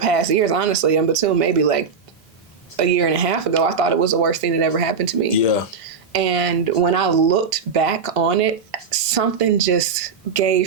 years, honestly, and until maybe like a year and a half ago, I thought it was the worst thing that ever happened to me. Yeah. And when I looked back on it, something just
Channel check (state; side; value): quieter; left; 5.6 dB